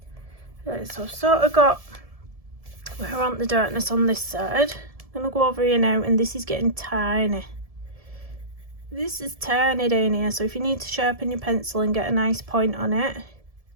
Right, so I've sort of got where I want the darkness on this side. I'm going to go over here now, and this is getting tiny. This is tiny down here, so if you need to sharpen your pencil and get a nice point on it,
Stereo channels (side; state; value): left; late; 1.7 ms